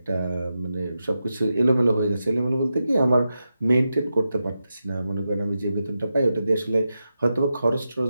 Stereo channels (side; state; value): both; inverted; correlation -0.89